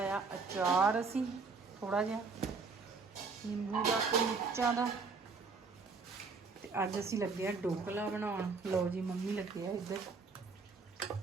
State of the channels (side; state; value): left; quieter; 4.6 dB